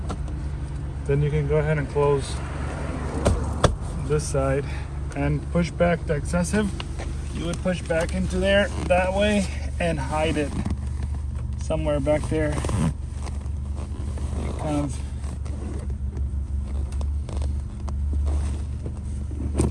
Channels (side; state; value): both; identical; correlation 1.00